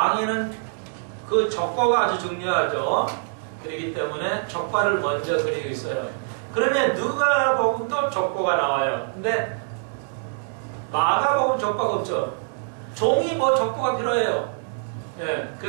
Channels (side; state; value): left; silent; digital silence